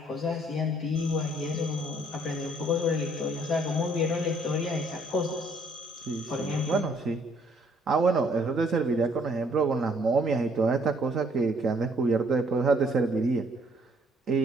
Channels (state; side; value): normal; both; correlation 0.64